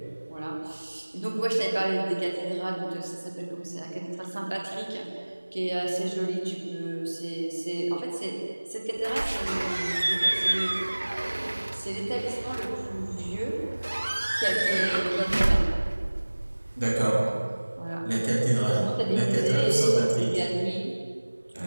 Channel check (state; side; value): inverted; both; correlation -1.00